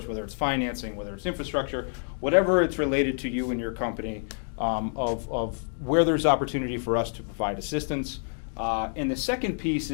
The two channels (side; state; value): right; silent; 60 dB below the other